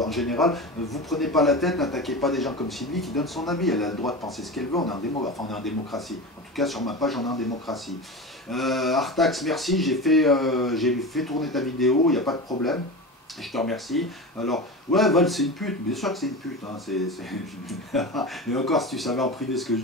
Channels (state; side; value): normal; both; correlation 0.27